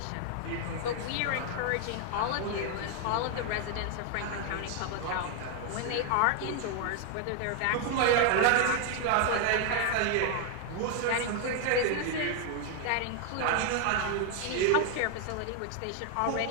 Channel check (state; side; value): different; both; correlation 0.00